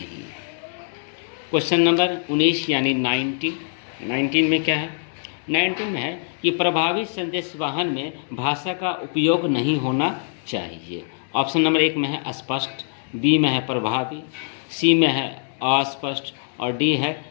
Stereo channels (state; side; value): silent; right; 63 dB below the other